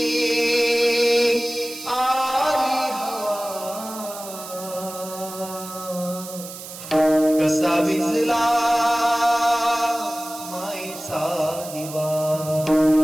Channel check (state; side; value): noise; right; hiss, 13 dB below the sound